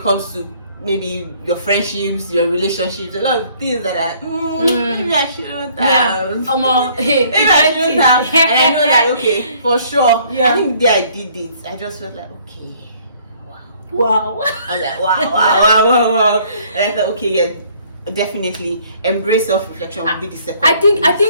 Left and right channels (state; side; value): inverted; both; correlation -0.60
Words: comes to maybe your friendships, your relationships, a lot of things that are maybe I shouldn't have. Maybe I shouldn't have. And I know that okay, for sure. I think I did it. I just felt like okay, wow. I was like wow. And I thought okay, definitely embrace self-reflection will be the second. I